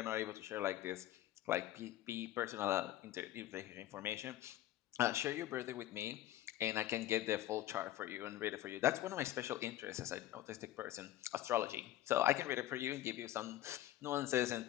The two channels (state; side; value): quieter; right; 14.0 dB